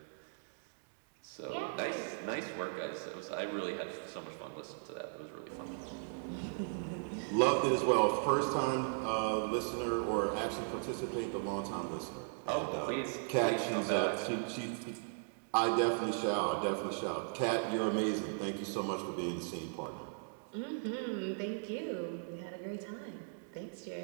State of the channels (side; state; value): left; silent; digital silence